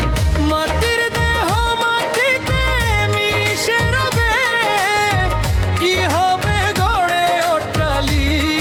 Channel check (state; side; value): identical; both; correlation 1.00